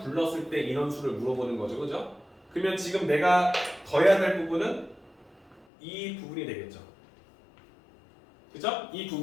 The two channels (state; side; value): drops out; right; at 5.7 s